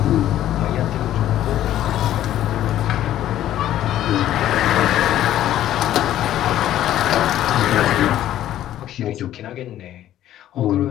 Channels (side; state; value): right; quieter; 12.5 dB